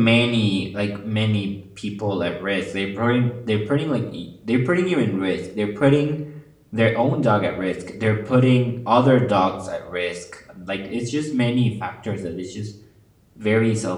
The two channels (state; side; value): identical; both; correlation 1.00